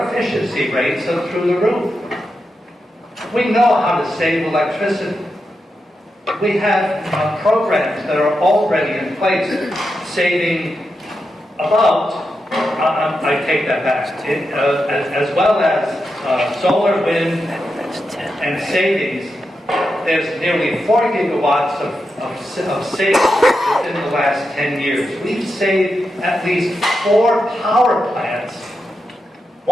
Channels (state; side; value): normal; both; correlation 0.87